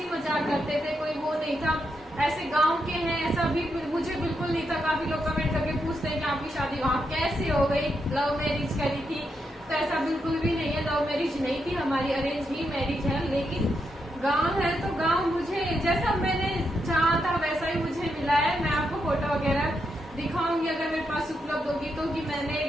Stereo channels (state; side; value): normal; both; correlation 0.82